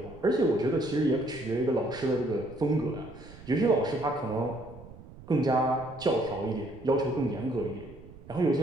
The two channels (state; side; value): noise; right; rumble, 18 dB below the sound